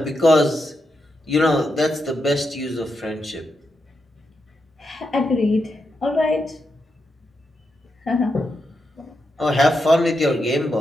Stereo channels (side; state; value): both; normal; correlation 0.84